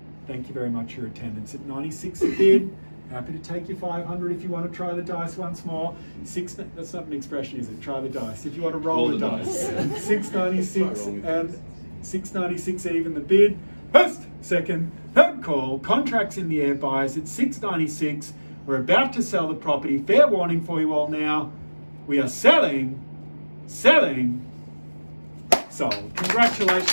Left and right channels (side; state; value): both; inverted; correlation -1.00